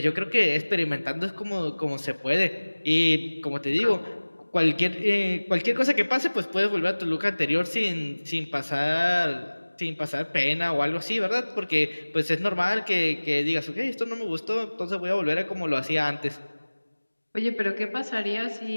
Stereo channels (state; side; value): inverted; both; correlation -1.00